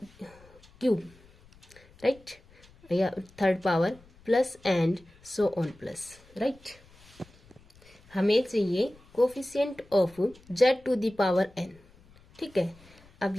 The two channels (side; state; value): left; noise; rumble, 27 dB below the sound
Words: cube, right, या third power plus and so on plus, right. हमें चाहिए coefficient of z to the power n, ठीक है। अब